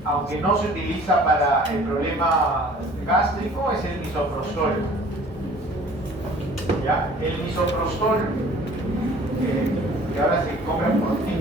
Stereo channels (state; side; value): normal; both; correlation 0.50